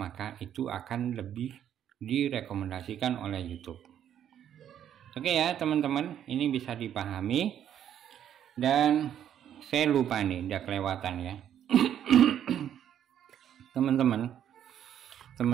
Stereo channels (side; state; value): left; quieter; 10.0 dB